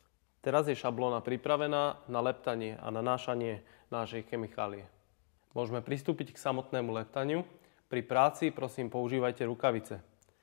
Teraz je šablóna pripravená na leptanie a nanášanie našej chemikálie. Môžeme pristúpiť k samotnému leptaniu. Pri práci prosím používajte rukavice.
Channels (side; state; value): right; silent; digital silence